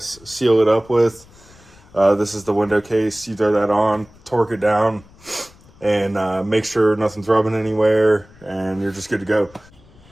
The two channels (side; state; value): left; noise; rumble, 26 dB below the sound